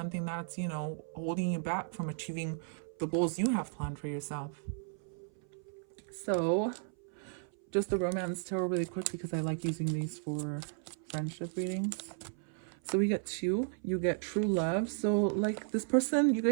that's, holding you back from achieving the goals you have planned for yourself? So just the romance tarot really quick, because I like using these for friendship readings. So we get 2, you get true love. So like this person, you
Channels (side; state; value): left; silent; 55 dB below the other